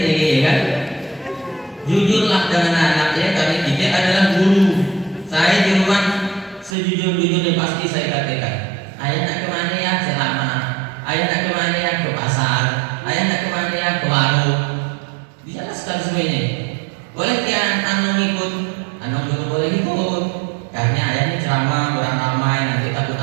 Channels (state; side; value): drops out; left; at 6.8 s